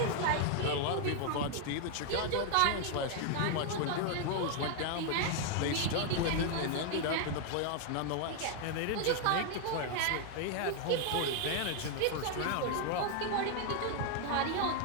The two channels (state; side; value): different; both; correlation 0.00